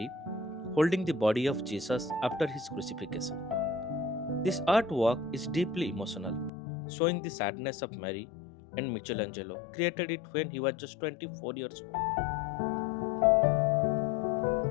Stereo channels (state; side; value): drops out; right; at 6.5 s